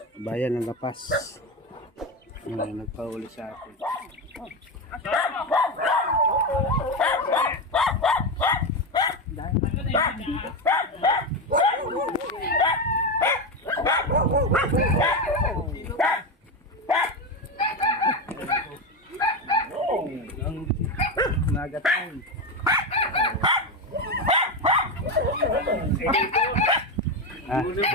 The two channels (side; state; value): both; normal; correlation 0.14